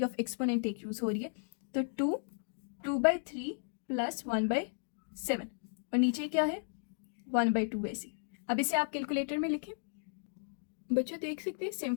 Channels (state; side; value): silent; right; digital silence